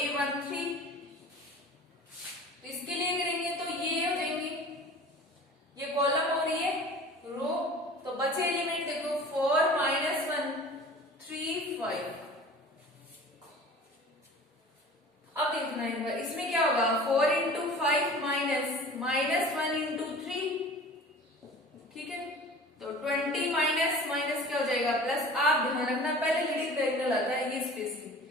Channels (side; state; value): both; normal; correlation 0.42